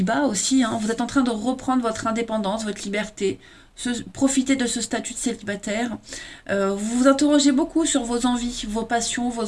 aussi. Hein. Vous êtes en train de reprendre votre indépendance, votre liberté. Profiter de ce statut de célibataire. Vous vous interrogez beaucoup sur vos envies, vos passions,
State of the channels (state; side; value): identical; both; correlation 1.00